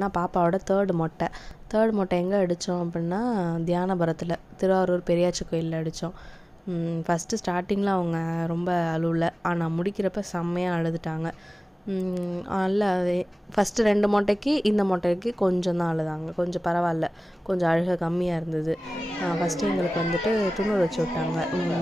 பாப்பாவோட தேர்ட் மொட்டை எங்கே அடித்தோம் அப்படின்னா, தியானபுரத்தில் திருவாரூர் பெரியாச்சி கோயிலில் அடித்தோம். ஃபஸ்ட்டு ஸ்டார்டிங்கில் அவங்க ரொம்ப அழுவலை, ஆனால் முடிக்கிறப்ப செம்மையாக அழுதுட்டாங்க. நல்லா ஃபஸ்ட்டு 2 மொட்டைக்கு இந்த மொட்டைக்கு கொஞ்சம் தான் அழுதாங்க, கொஞ்சம் பரவாயில்ல, கொஞ்சம் அழுகை கம்மியாக இருந்தது. ஃபஸ்ட்டு எங்களுக்கு வந்துட்டு துணூறு வச்சு விட்டாங்க.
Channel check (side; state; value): both; normal; correlation 0.98